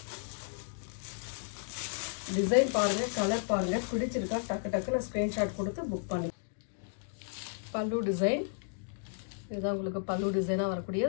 Design பாருங்க, கலர் பாருங்க, பிடிச்சிருக்கா டக்கு டக்குன்னு ஸ்கிரீன்ஷாட் கொடுத்து புக் பண்ணி. பல்லு டிசைன், இதுதான் உங்களுக்கு பல்லு டிசைனாக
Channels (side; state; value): right; silent; digital silence